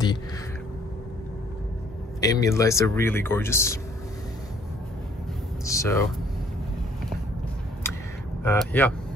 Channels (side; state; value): both; normal; correlation 0.61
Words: ambient lights. Are really gorgeous. So yeah,